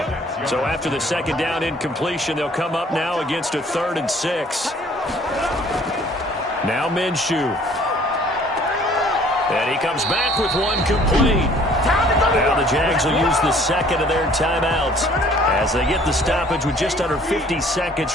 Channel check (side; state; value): both; normal; correlation 0.56